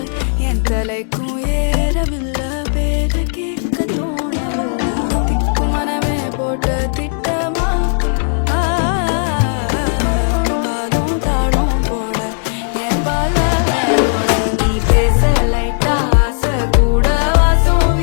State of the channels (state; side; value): silent; right; digital silence